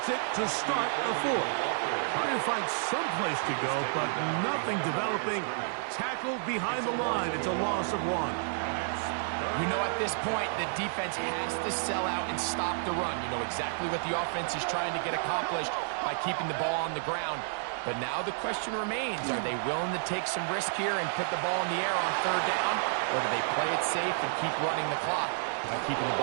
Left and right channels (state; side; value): silent; left; digital silence